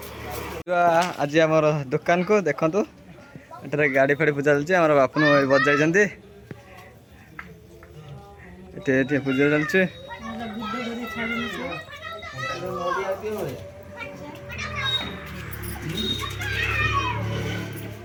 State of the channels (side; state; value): both; identical; correlation 1.00